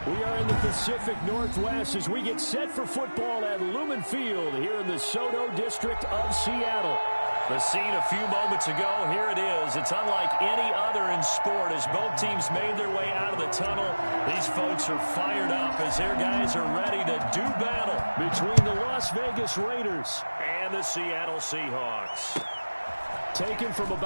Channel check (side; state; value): both; inverted; correlation -1.00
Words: We are in the Pacific Northwest as we get set for football at Lumen Field here in the Soto District of Seattle. The scene a few moments ago, here it is. It's unlike any other in sport as both teams made their way out of the tunnel. These folks are fired up as their guys are ready to do battle between the Las Vegas Raiders and the Seattle Seahawks. Taken from